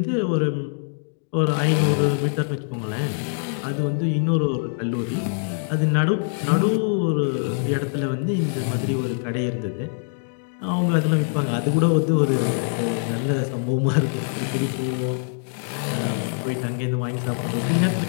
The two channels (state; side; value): silent; right; digital silence